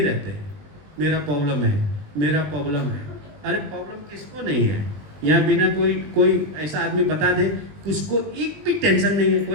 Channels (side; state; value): left; late; 20 ms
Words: हैं, मेरा प्रॉब्लम है, मेरा प्रॉब्लम है। अरे प्रॉब्लम किसको नहीं है? यहाँ बिना कोई ऐसा आदमी बता दे उसको एक भी टेंशन नहीं है,